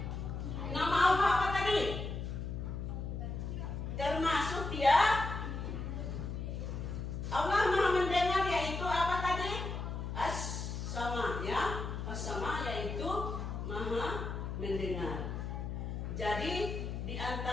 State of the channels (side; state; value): left; noise; hum, 4 dB below the sound